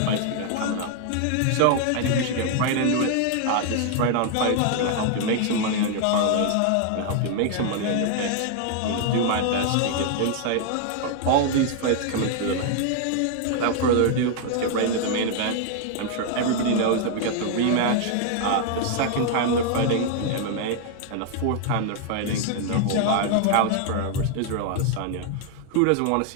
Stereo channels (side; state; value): both; different; correlation 0.00